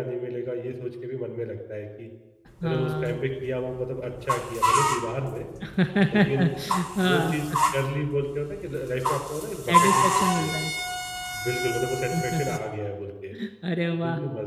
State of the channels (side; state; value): both; identical; correlation 1.00